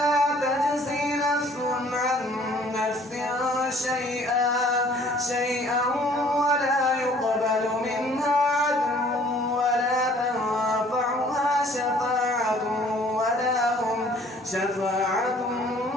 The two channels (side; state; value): both; normal; correlation 0.56